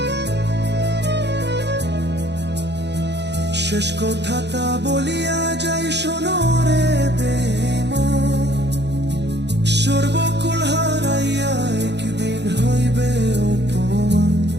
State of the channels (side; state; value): left; late; 0.50 ms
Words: শেষ কথাটা বলিয়া যাই শোনো রে বেঈমান, সর্বকুল হারাইয়া একদিন হইবে অপমান।